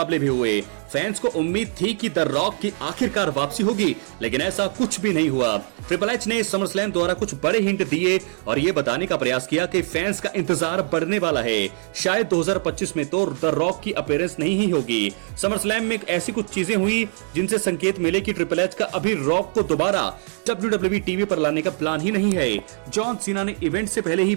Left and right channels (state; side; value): silent; left; 55 dB below the other